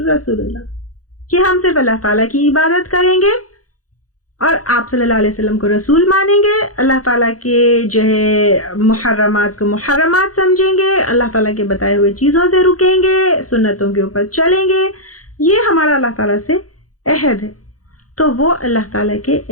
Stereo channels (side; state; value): right; late; 0.67 ms